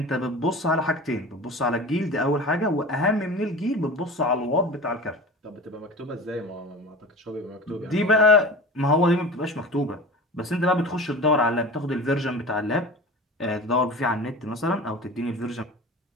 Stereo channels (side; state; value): both; normal; correlation 0.35